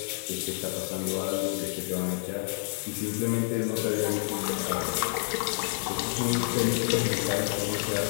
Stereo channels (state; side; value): silent; right; digital silence